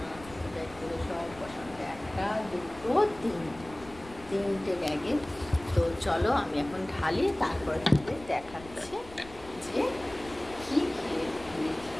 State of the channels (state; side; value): noise; left; rumble, 19 dB below the sound